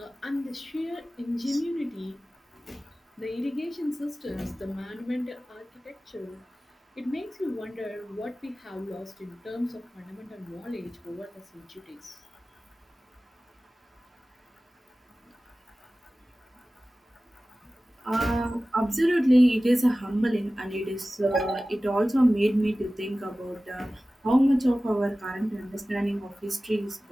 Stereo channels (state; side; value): normal; both; correlation 0.96